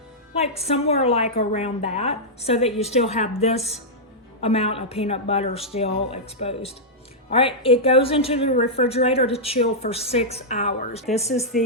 like somewhere like around that, so that you still have this amount of peanut butter still exposed. All right, it goes into the refrigerator to chill for 6 hours. This is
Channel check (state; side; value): normal; both; correlation -0.09